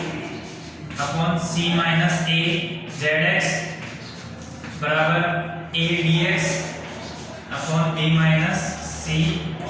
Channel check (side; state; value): both; identical; correlation 1.00